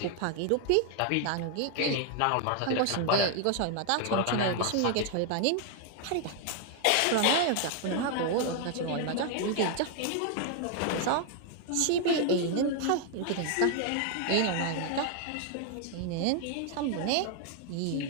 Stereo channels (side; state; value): both; different; correlation 0.00